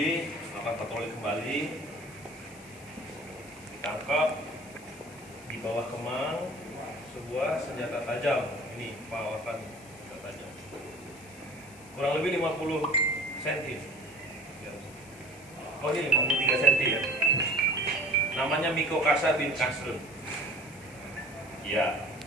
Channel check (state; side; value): noise; left; hiss, 21 dB below the sound